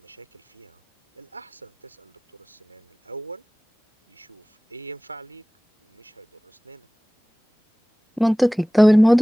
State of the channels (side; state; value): both; normal; correlation 0.98